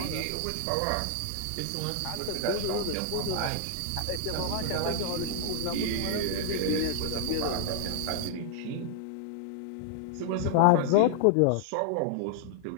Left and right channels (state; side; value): different; both; correlation 0.00